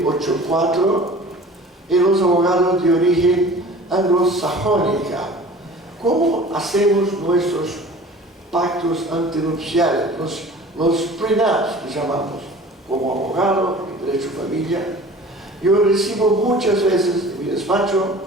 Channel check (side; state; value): both; normal; correlation 0.43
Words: y los abogados de origen anglosajónica. ¿Cómo hacemos nuestros pactos antinupciales, los prenups que llamamos? Como abogado en derecho de familia, yo recibo muchas veces en mi despacho,